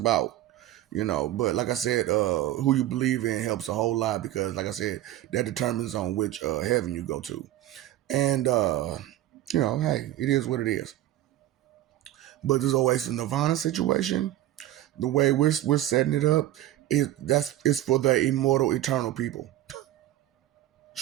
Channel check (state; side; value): quieter; left; 14.1 dB